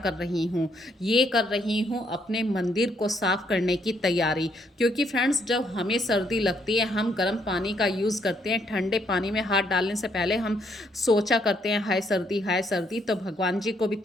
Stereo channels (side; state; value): both; normal; correlation 0.71